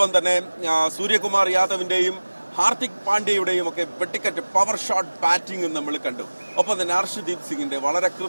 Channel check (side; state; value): both; inverted; correlation -1.00